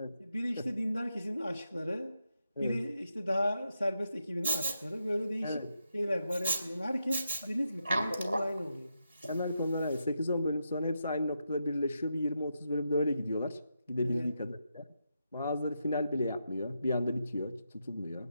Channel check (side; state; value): both; inverted; correlation -0.84